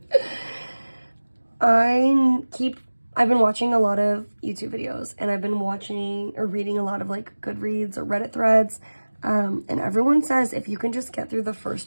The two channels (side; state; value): both; inverted; correlation -1.00